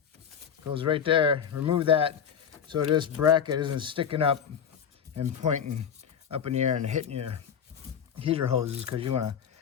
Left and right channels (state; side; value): quieter; right; 7.9 dB